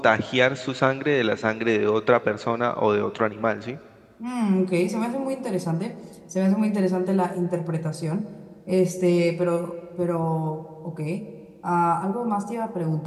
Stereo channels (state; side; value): identical; both; correlation 1.00